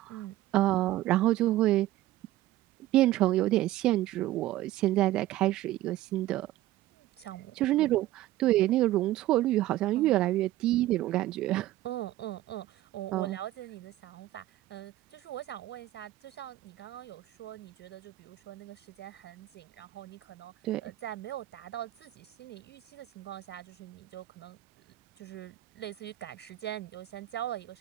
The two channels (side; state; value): left; quieter; 15.4 dB